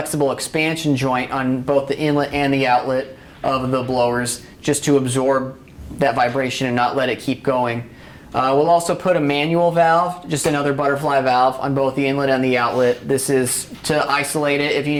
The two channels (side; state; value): both; identical; correlation 1.00